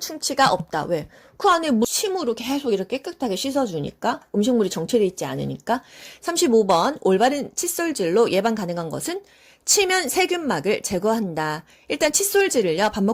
없다. 왜? 그 안에 침으로 계속 이렇게 깨끗하게 씻어주니까 음식물이 정체되어 있지 않으니까. 35번 올바른 칫솔질로 예방 가능한 것은 치면 세균막을 제거한다. 일단 칫솔질을요 밥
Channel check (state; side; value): identical; both; correlation 1.00